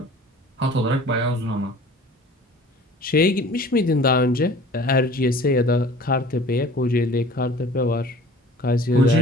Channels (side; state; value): both; normal; correlation 0.46